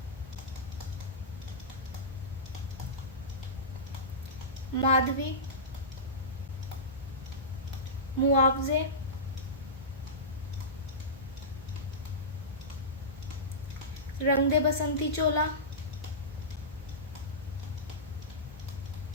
माधवी, मुआवजे, रंग दे बसंती चोला,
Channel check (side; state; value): both; normal; correlation -0.17